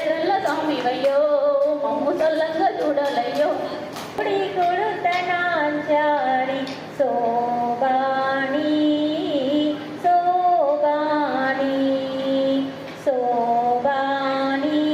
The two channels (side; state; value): both; identical; correlation 1.00